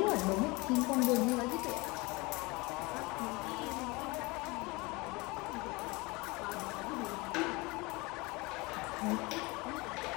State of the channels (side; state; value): right; quieter; 24.7 dB